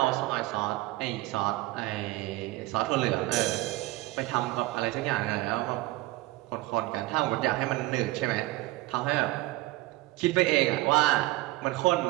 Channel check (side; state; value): left; quieter; 19.2 dB